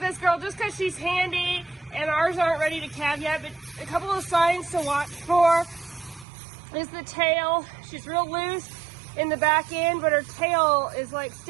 this girl just because she's handy and ours aren't ready to calve yet, but a couple of signs to watch for is the tail. She's real loose in the back end, but her tail is like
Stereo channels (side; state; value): left; drops out; at 6.2 s